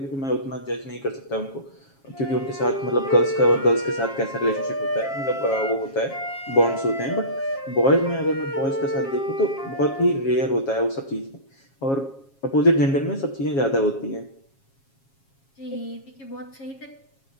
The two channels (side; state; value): right; late; 7.3 ms